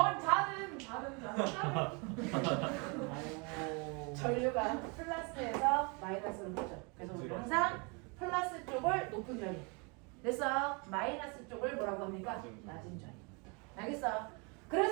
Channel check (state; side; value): quieter; left; 31.8 dB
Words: 다른 전류가 플러스에서 마이너스로 흐르죠. 그래서 우리 항상 플러스 쪽을 높은 전위. 됐어? 마이너스 쪽을 뭐라고 합니까? 낮은 전위. 알겠어?